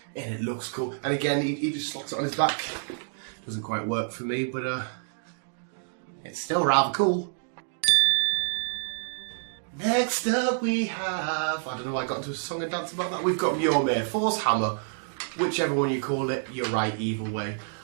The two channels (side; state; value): left; silent; digital silence